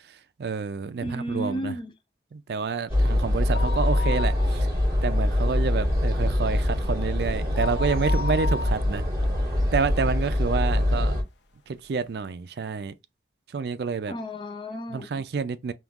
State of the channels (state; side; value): normal; both; correlation 0.65